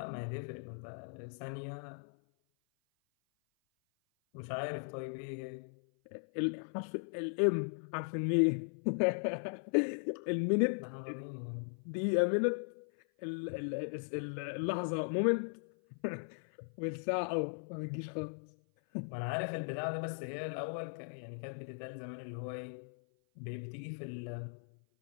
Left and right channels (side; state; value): right; silent; 53 dB below the other